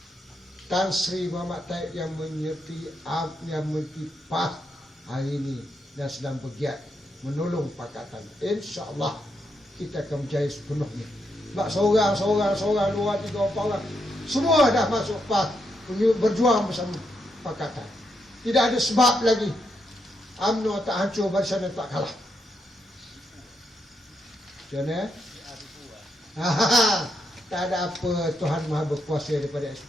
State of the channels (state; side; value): normal; both; correlation 0.81